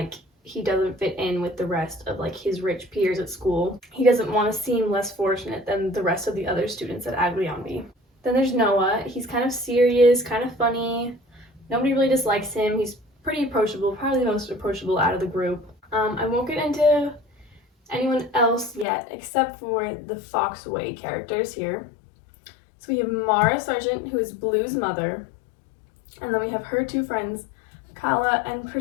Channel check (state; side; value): drops out; right; at 18.9 s